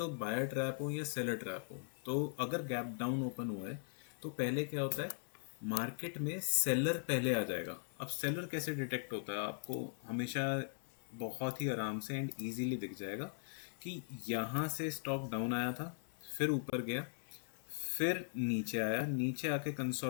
बायर ट्रैप हो या सेलर ट्रैप हो। तो अगर गैप डाउन ओपन हुआ है तो पहले क्या होता है, मार्केट में सेलर पहले आ जाएगा। अब सेलर कैसे डिटेक्ट होता है, आपको हमेशा बहुत ही आराम से एंड इजीली दिख जाएगा कि यहाँ से स्टॉक डाउन आया था, फिर ऊपर गया, फिर नीचे आया, नीचे आके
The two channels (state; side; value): silent; right; 51 dB below the other